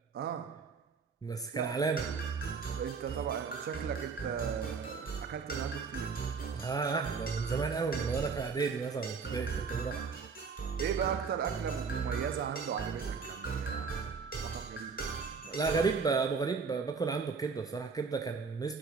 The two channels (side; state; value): left; quieter; 5.2 dB